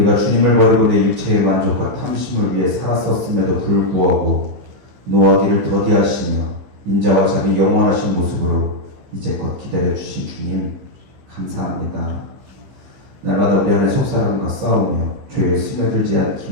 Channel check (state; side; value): late; left; 15 ms